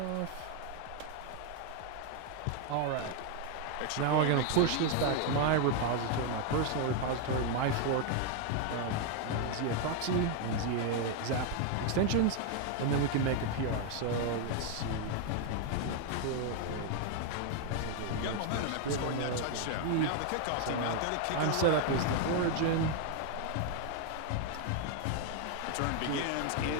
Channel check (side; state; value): both; different; correlation 0.01